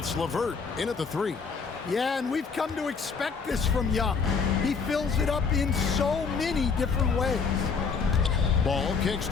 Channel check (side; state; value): right; quieter; 5.4 dB